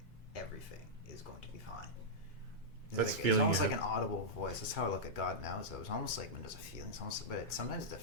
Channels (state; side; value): normal; both; correlation -0.10